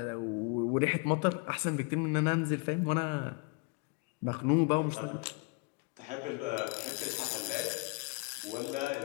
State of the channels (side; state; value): right; quieter; 29.9 dB